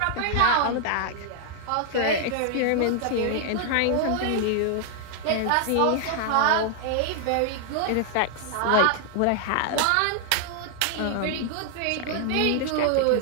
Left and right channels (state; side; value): different; both; correlation 0.00